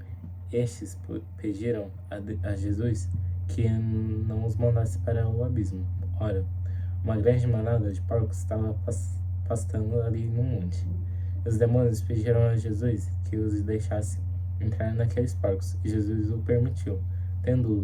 Estes pediram a Jesus que não os mandasse para o abismo. Ora, uma grande manada de porcos estava pastando ali no monte. Os demônios pediram a Jesus que os deixasse entrar naqueles porcos, e Jesus o permitiu. Tendo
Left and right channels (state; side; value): identical; both; correlation 1.00